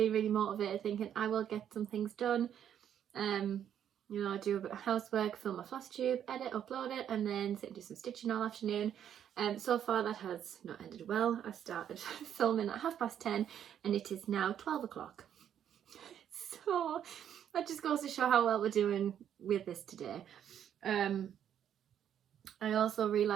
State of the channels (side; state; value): left; quieter; 9.6 dB